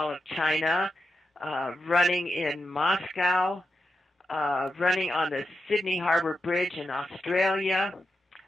of China, running in Moscow, running on the Sydney Harbour Bridge in Australia.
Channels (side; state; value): both; normal; correlation 0.88